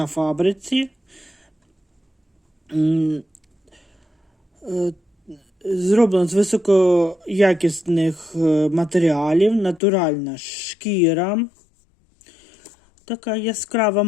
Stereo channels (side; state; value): right; drops out; at 9.8 s